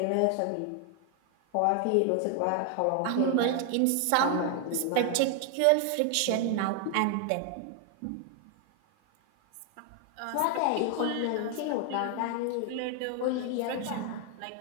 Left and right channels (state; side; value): different; both; correlation 0.00